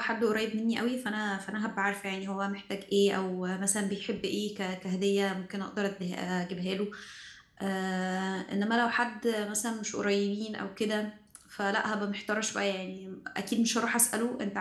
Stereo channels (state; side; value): identical; both; correlation 1.00